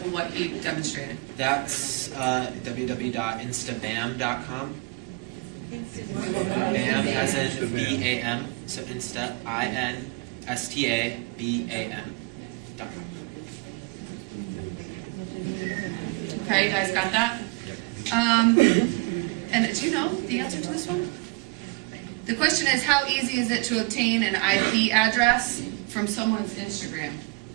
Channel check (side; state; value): left; quieter; 28.5 dB